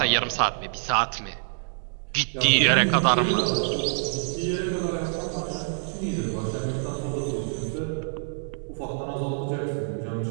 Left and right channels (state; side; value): silent; left; digital silence